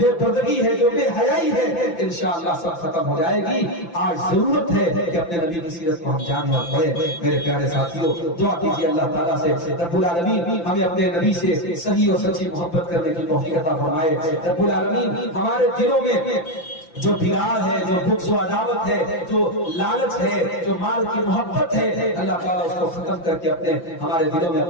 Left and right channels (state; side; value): late; right; 5.9 ms